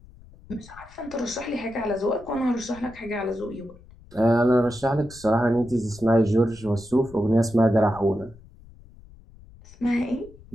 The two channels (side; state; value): left; noise; rumble, 22 dB below the sound